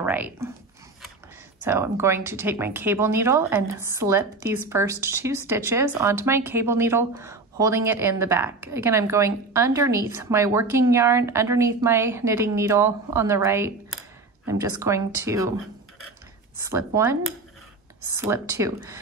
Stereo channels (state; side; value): quieter; left; 3.6 dB